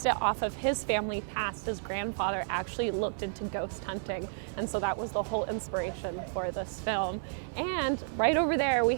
it off of his family past. His grandfather actually looked into ghost hunting, and so that was the whole inspiration for this film. And right over there, we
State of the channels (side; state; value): left; silent; digital silence